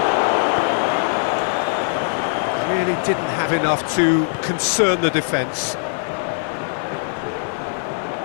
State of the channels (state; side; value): silent; right; digital silence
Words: Really didn't have enough to concern the defence.